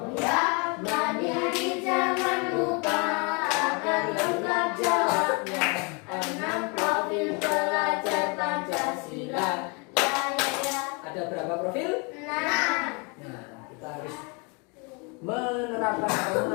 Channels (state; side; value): quieter; right; 32.3 dB